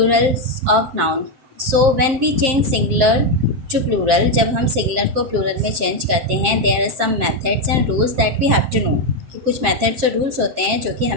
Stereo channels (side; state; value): left; late; 7.6 ms